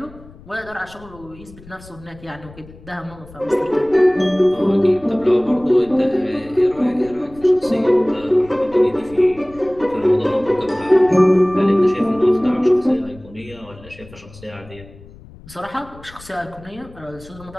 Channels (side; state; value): left; noise; rumble, 21 dB below the sound